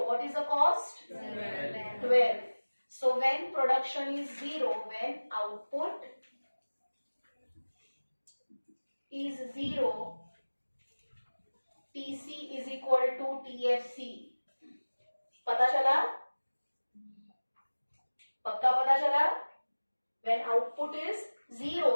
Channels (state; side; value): inverted; both; correlation -1.00